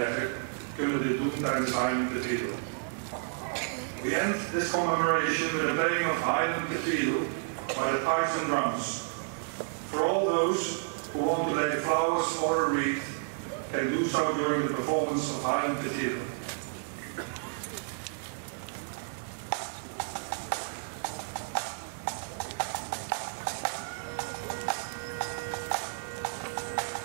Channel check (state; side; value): silent; left; 57 dB below the other